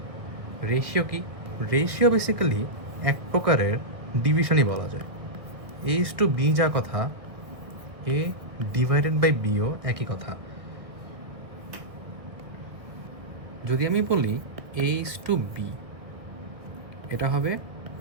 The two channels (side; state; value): left; late; 1.4 ms